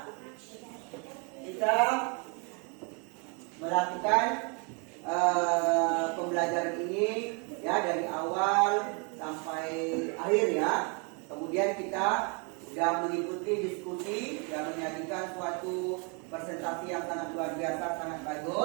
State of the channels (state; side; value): quieter; left; 34.8 dB